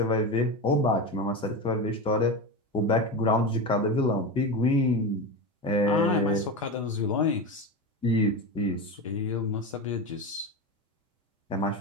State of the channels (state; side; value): normal; both; correlation 0.21